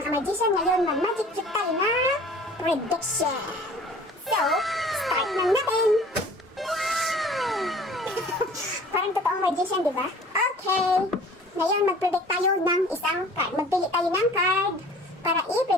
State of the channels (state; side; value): normal; both; correlation 0.48